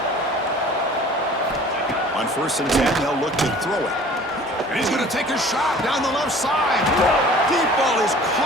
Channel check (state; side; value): normal; both; correlation 0.47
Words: On 1st and 10, they'll look to throw it. And he's going to take a shot down the left side. Deep ball is